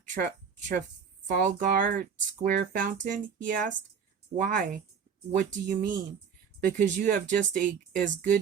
Trafalgar Square fountain? He asked. Why? What do you mean? Because you have just as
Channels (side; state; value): left; quieter; 6.7 dB